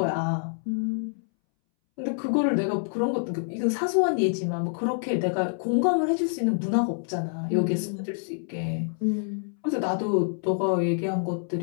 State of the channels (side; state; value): right; silent; 60 dB below the other